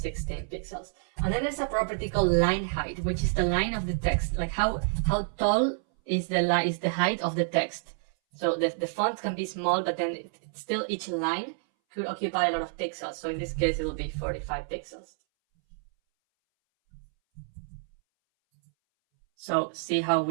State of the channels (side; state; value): left; silent; 59 dB below the other